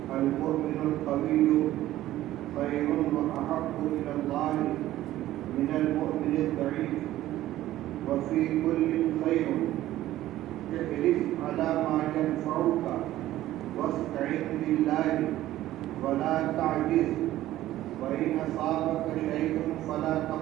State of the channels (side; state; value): left; quieter; 14.5 dB